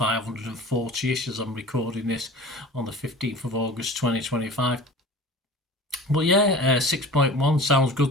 as I'm recording this on the 15th of August 2025. But yeah, 6.1 sounds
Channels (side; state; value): both; normal; correlation 0.39